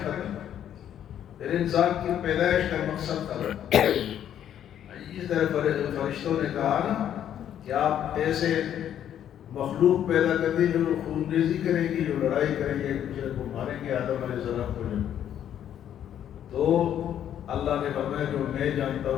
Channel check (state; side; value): quieter; right; 10.2 dB